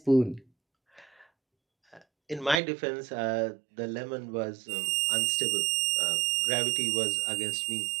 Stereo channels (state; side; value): drops out; left; at 2.6 s